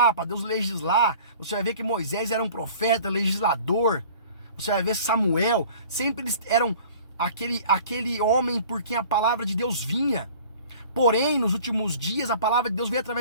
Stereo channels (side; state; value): both; inverted; correlation -0.47